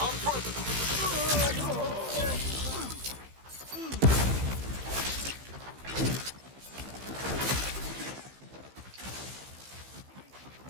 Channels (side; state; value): left; late; 15 ms